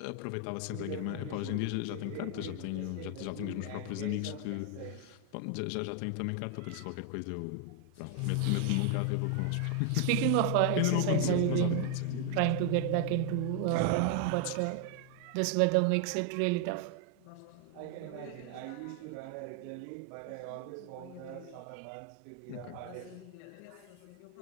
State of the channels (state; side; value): different; both; correlation 0.00